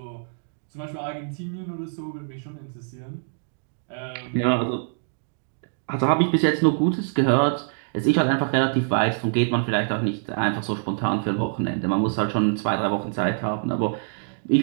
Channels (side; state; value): left; silent; digital silence